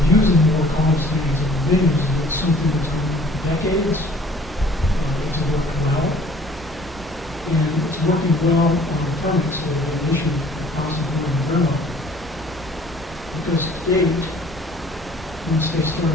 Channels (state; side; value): normal; both; correlation 0.53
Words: using more common standards and things is something that's been for decades. It's working well, and it's working well on the permits that have been issued possibly in the railroad. Because state, once they